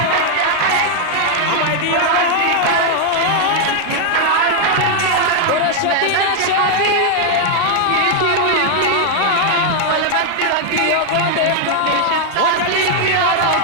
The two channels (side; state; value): both; different; correlation 0.00